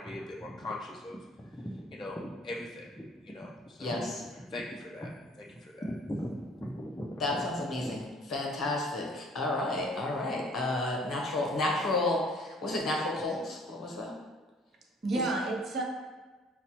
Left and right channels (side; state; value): both; normal; correlation 0.54